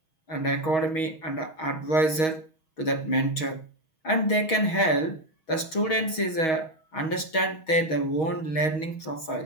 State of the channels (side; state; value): right; late; 6.3 ms